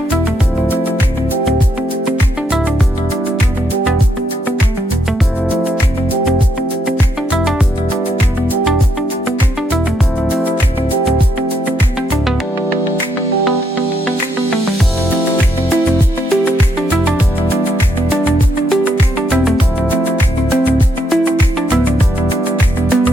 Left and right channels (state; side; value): normal; both; correlation 0.76